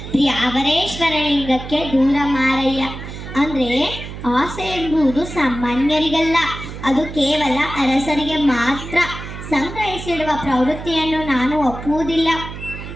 ಪ್ರಿಯ ಅವರೇಶ್ವರ ಲಿಂಗಕ್ಕೆ ದೂರ ಮಾರಯ್ಯ. ಅಂದರೆ ಆಸೆ ಎಂಬುದು ಸಾಮಾನ್ಯರಿಗಲ್ಲ, ಅದು ಕೇವಲ ಅರಸರಿಗೆ ಮಾತ್ರ. ಸಂಗ್ರಹಿಸಿಡುವ ಪ್ರವೃತ್ತಿಯನ್ನು ನಾನು ಒಪ್ಪುವುದಿಲ್ಲ.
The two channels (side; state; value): right; noise; hum, 10 dB below the sound